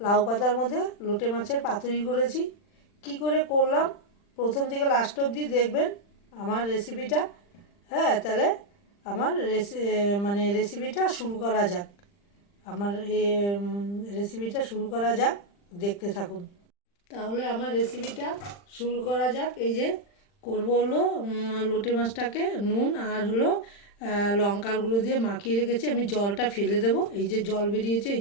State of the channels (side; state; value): right; late; 40 ms